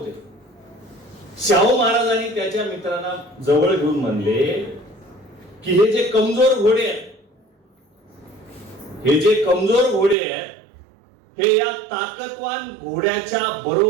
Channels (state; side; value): drops out; left; at 10.2 s